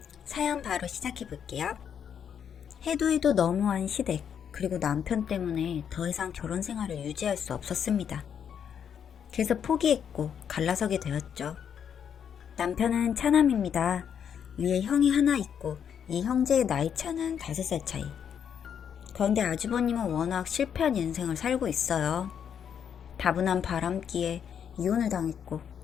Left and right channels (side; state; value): right; quieter; 8.1 dB